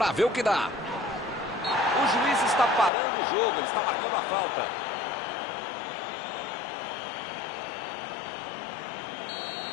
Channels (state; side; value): drops out; right; at 2.9 s